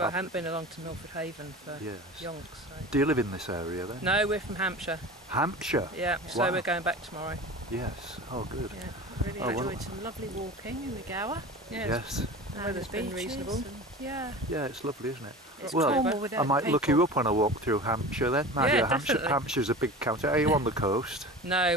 haven't been along to Milford Haven for yonks. So. Do you live in this area then? No, we're from Hampshire. Hampshire? Yeah, so we're going back tomorrow. Yes, oh good. Yeah, really enjoyed some lovely walking in the Gower. Yes. The weather's been reasonable. Yeah, it's lovely, isn't it? It's well, I might people. look you up when I walk through Hampshire then. Definitely. Hampshire's a big county. Are you on the coast? No,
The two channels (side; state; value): both; normal; correlation 0.34